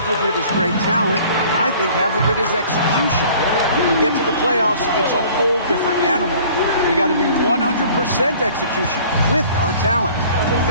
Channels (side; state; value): both; inverted; correlation -0.51